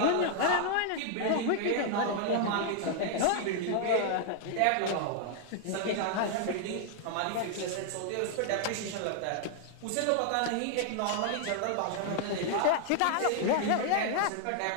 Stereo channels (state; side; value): different; both; correlation -0.01